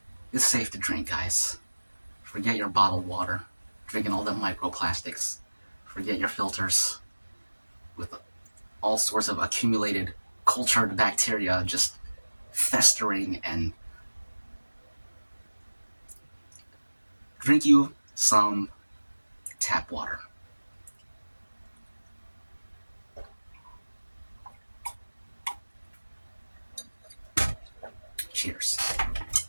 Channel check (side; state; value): both; inverted; correlation -1.00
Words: it's safe to drink, guys. Forget your bottled water, drinking all the microplastics. Forget your filters with all sorts of accumulated cultured bacteria just festering and drink you some tap water. Cheers.